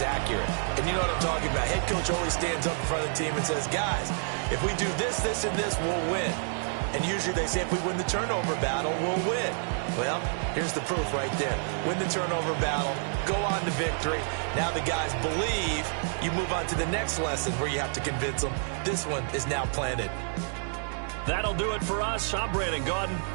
accurate. And you know what I'm talking about. Head coach always stands up in front of the team and says, guys, if we do this, this, and this, we'll win. And usually they say if we win the turnover battle, we'll win. Well, here's the proof right there. Win the turnover battle, go on to victory. Now the guys believe. You move on to the next lesson where you have to convince them. This one is now planted. That'll do it for us. I'm Brandon Gaudin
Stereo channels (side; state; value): left; silent; 59 dB below the other